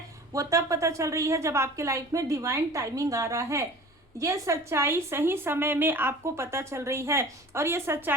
वो तब पता चल रही है जब आपके लाइफ में डिवाइन टाइमिंग आ रहा है। ये सच्चाई सही समय में आपको पता चल रही है, और ये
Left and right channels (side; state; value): both; normal; correlation 0.42